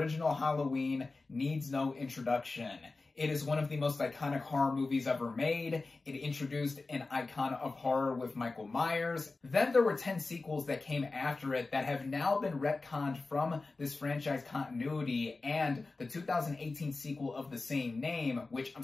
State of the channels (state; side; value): quieter; right; 3.6 dB